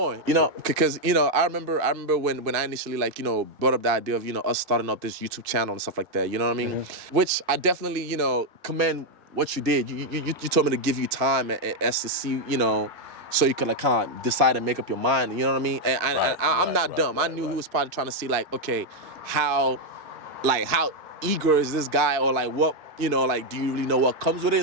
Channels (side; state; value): left; late; 2.5 ms